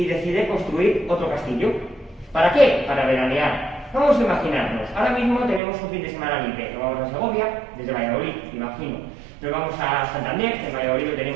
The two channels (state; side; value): drops out; left; at 5.6 s